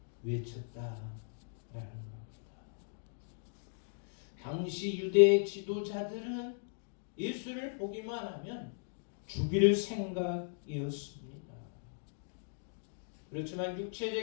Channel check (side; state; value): right; silent; digital silence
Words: 외쳤다라는 겁니다. 당시 유대 지도자들은 예수를 보기만 하면 죽일 생각이었습니다. 그렇지만